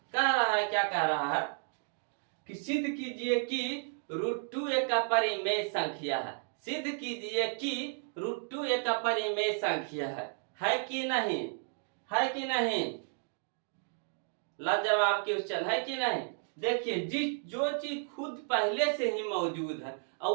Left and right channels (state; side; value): silent; left; 56 dB below the other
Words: कह रहा है, क्या कह रहा है कि सिद्ध कीजिए कि √2 एक अपरिमेय संख्या है। सिद्ध कीजिए कि √2 एक अपरिमेय संख्या है कि नहीं? है कि नहीं? लाजवाब क्वेश्चन है कि नहीं? देखिए, जो चीज खुद पहले से ही मौजूद है और